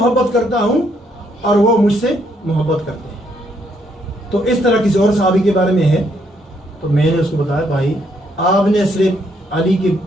کرتا ہوں اور وہ مجھ سے محبت کرتے ہیں۔ تو اس طرح کسی اور صحابی کے بارے میں ہے تو میں نے اس کو بتایا، بھائی آپ نے صرف علی کی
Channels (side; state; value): both; normal; correlation 0.72